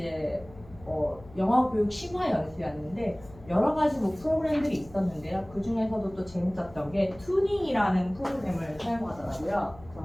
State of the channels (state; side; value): noise; left; hum, 21 dB below the sound